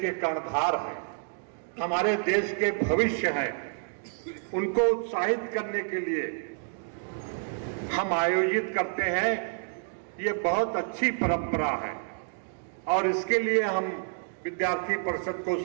कर्णधार हैं, हमारे देश के भविष्य हैं, उनको उत्साहित करने के लिए हम आयोजित करते हैं। ये बहुत अच्छी परंपरा है और इसके लिए हम विद्यार्थी परिषद को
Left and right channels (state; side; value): silent; left; 59 dB below the other